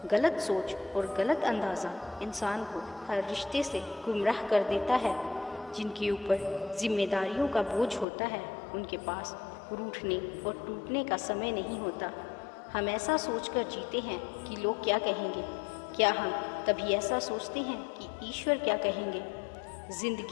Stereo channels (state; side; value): drops out; right; at 8.1 s